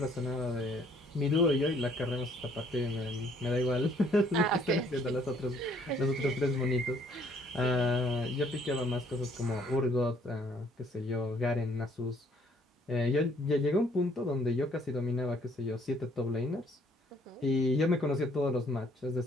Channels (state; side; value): normal; both; correlation 0.63